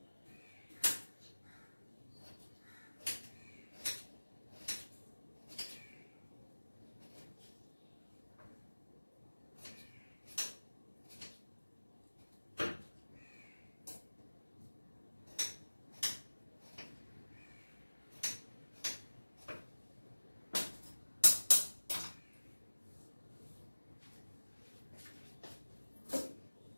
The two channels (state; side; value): inverted; both; correlation -1.00